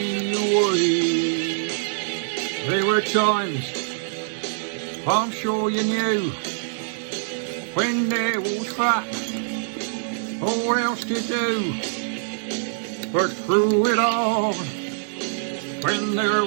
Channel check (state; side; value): silent; left; digital silence